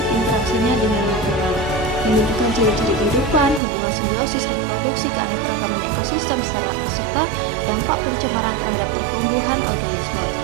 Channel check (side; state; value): left; drops out; at 3.6 s